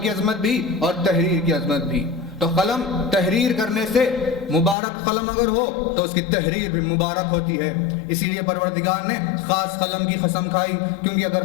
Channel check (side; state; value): right; drops out; at 4.8 s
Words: عظمت بھی اور تحریر کی عظمت بھی۔ تو قلم تحریر کرنے سے مبارک قلم اگر ہو تو اس کی تحریر بھی مبارک ہوتی ہے۔ اسی لیے پروردگار نے خاص قلم کی قسم کھائی، کیونکہ اگر